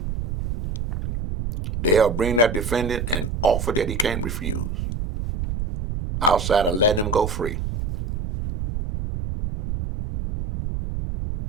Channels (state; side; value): noise; right; rumble, 4 dB below the sound